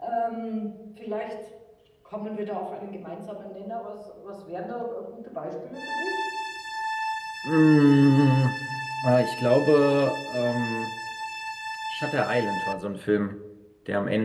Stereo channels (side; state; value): both; identical; correlation 1.00